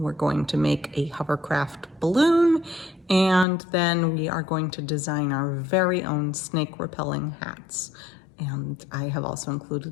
going to make a hovercraft balloon, and then we are going to design our very own snake repelling hats. And I have also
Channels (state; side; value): drops out; right; at 3.5 s